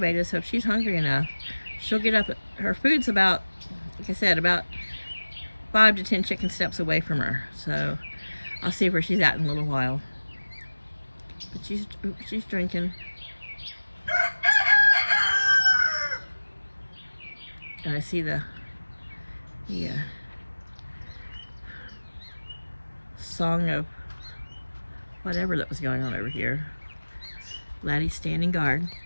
so if she's hungry enough, she'll get up. Her food's about, like I said, about 5 to 10 chicken steps away from her. So I'll see where she's at in a little while. But she's drinking. And I see the song of whatever that was going on over here. Laddie's standing guard.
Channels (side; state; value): both; inverted; correlation -1.00